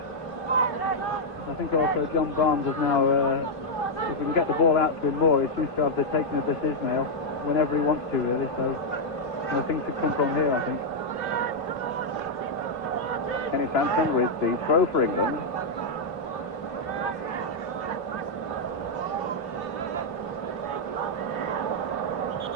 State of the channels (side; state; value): right; late; 3.0 ms